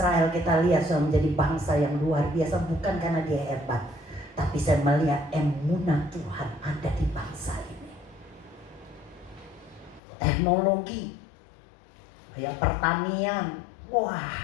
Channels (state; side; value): drops out; right; at 10.0 s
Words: kita lihat sudah menjadi bangsa yang luar biasa. Bukan karena dia hebat, tapi saya melihat emunah Tuhan ada di bangsa ini. Teknologi, kayak pertanian, wah